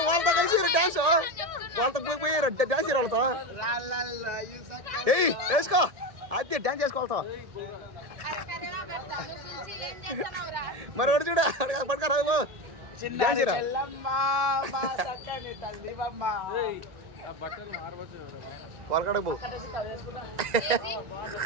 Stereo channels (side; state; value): left; late; 1.7 ms